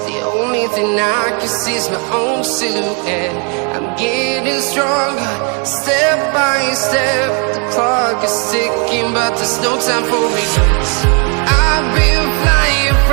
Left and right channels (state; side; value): quieter; left; 36.8 dB